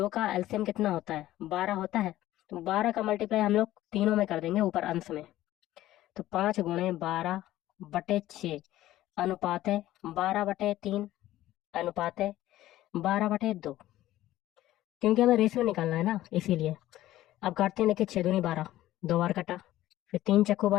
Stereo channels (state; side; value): quieter; right; 14.8 dB